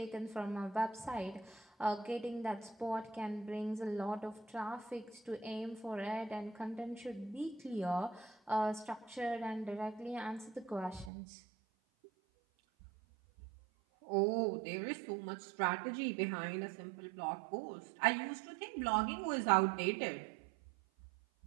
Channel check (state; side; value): drops out; left; at 11.1 s